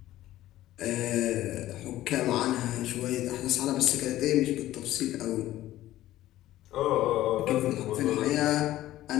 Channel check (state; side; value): quieter; right; 14.6 dB